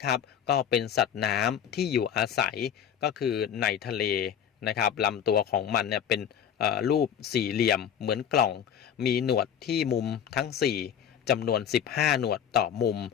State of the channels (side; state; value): right; quieter; 8.7 dB